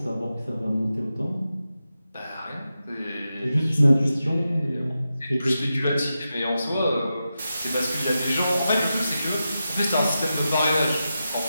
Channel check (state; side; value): inverted; both; correlation -0.90